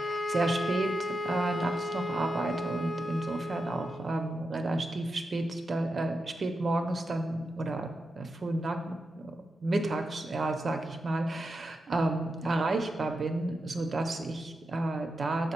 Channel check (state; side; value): normal; both; correlation 0.88